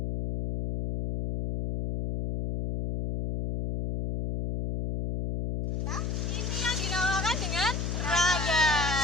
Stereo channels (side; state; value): left; noise; hum, 2 dB below the sound